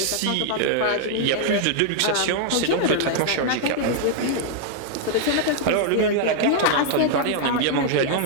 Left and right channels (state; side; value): different; both; correlation -0.01